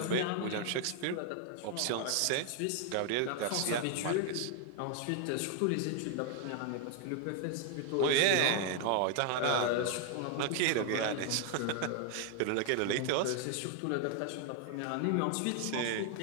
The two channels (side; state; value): both; different; correlation 0.00